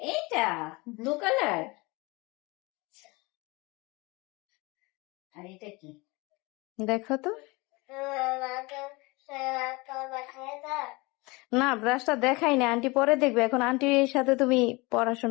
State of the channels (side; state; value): right; quieter; 25.2 dB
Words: এইটা ব্লু কালার। আর এটা কি? দেখো তো। না, ব্রাশটা দেখাই না, আন্টি পরে দেখবে, এখন আন্টির সাথে তুমি